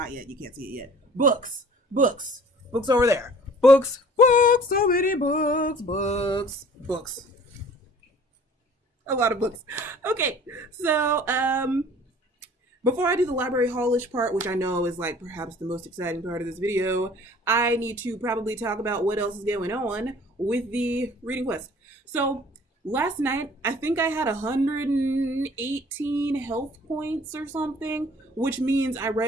yet. You can't see it yet. Books over there. Books, so many books. A lot of books. Okay, so before I do the library haulish part, which I know is like perhaps the most exciting part of this video, I need to probably talk about what else is going on with the reading quest. So last night, I think I had 118 health points or something, which means I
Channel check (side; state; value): both; normal; correlation 0.50